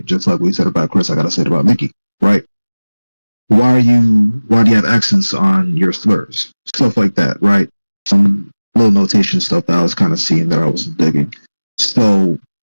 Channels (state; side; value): inverted; both; correlation -1.00